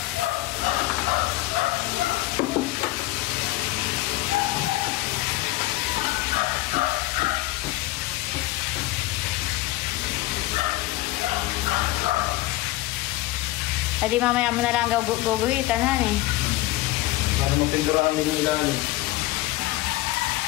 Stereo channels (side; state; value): right; quieter; 18.3 dB